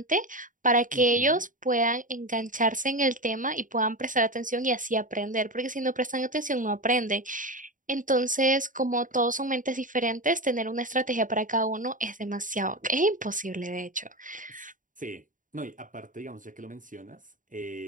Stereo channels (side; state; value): left; late; 0.38 ms